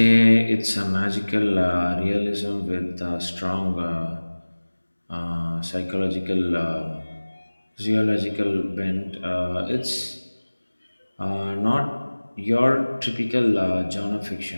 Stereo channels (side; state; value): both; inverted; correlation -1.00